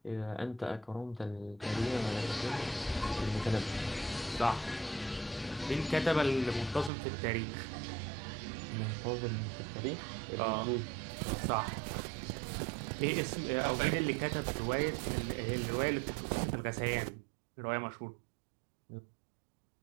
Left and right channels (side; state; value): left; drops out; at 6.9 s